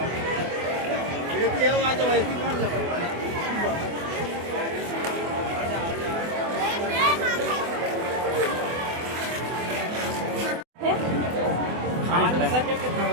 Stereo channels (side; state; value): left; late; 24 ms